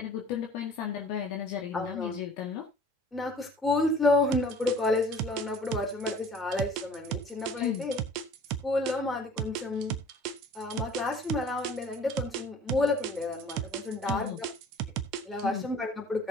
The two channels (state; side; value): normal; both; correlation 0.49